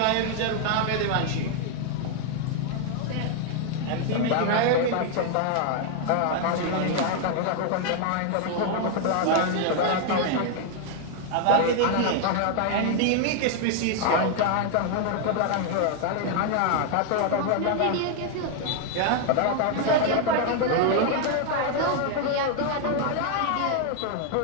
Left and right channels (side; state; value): both; different; correlation 0.00